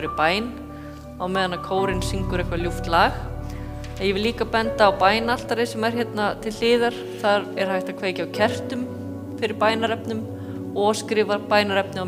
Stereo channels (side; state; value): both; identical; correlation 1.00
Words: bæn á meðan að kórinn syngur eitthvað ljúft lag. Ég vil líka benda á bænaltari sem hérna til hliðar. Þar hægt að kveikja á kertum fyrir bænarefnum og skrifa bænarefni á